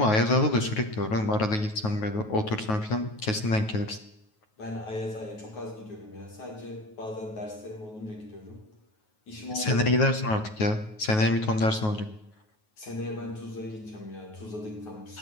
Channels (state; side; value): late; right; 9.3 ms